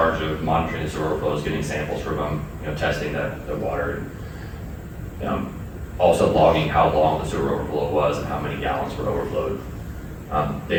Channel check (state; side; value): identical; both; correlation 1.00